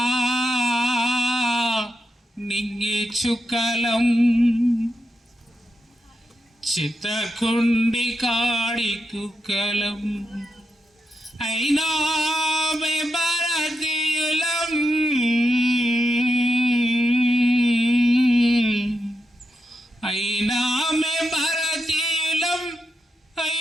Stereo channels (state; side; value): normal; both; correlation 0.85